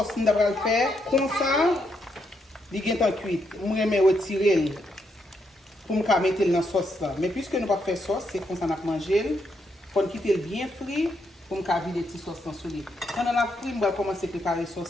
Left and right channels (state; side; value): normal; both; correlation 0.78